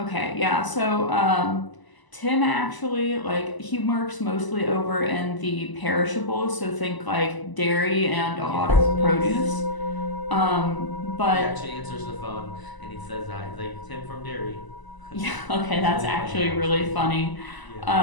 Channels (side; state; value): right; late; 1.0 ms